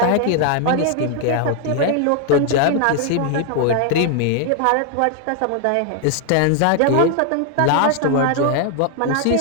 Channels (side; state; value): both; different; correlation 0.00